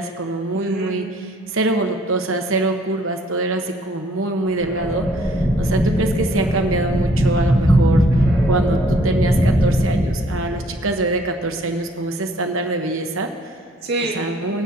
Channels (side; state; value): both; normal; correlation 0.60